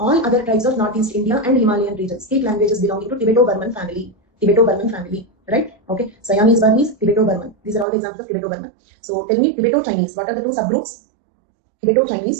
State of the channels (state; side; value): drops out; left; at 7.9 s